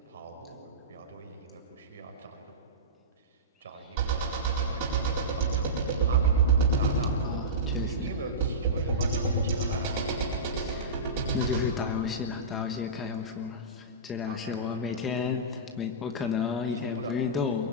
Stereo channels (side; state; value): both; normal; correlation -0.18